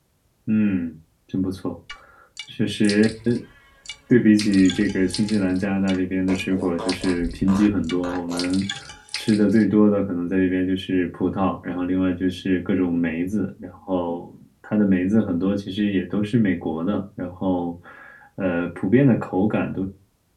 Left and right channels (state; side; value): identical; both; correlation 1.00